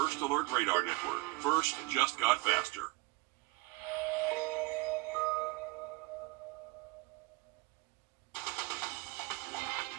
Alert Radar Network. First just got faster.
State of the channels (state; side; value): quieter; left; 23.3 dB